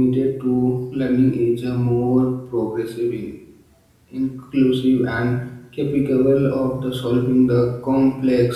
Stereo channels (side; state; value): both; identical; correlation 1.00